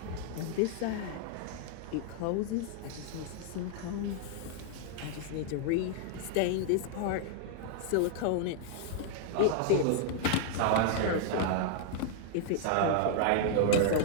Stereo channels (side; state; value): both; different; correlation -0.01